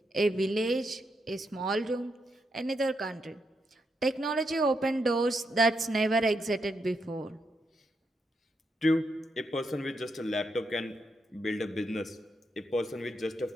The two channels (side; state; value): both; normal; correlation 0.82